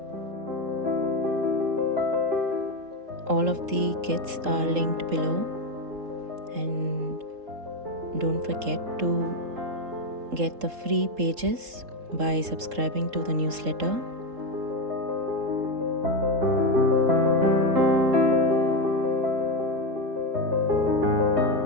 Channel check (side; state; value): left; late; 3.7 ms